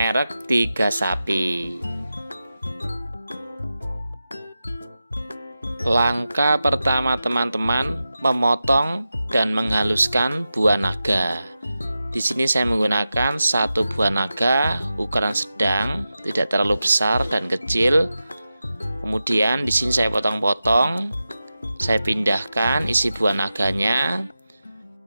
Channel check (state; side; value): inverted; both; correlation -0.93